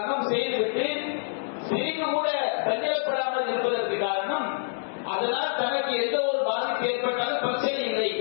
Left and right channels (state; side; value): silent; right; digital silence